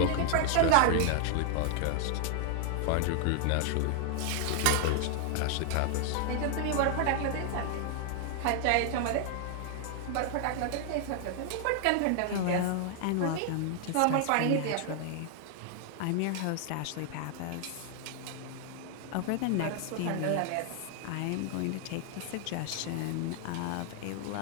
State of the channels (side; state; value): both; different; correlation 0.00